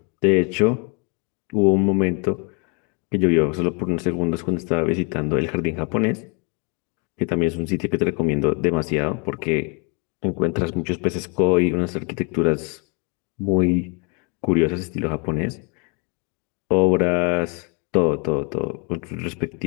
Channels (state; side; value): quieter; right; 34.1 dB